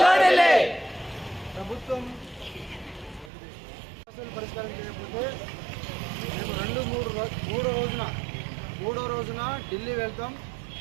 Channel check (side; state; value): left; drops out; at 3.3 s